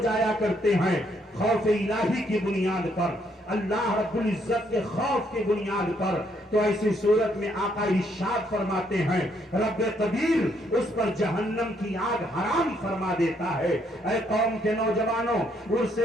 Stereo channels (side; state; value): both; normal; correlation 0.71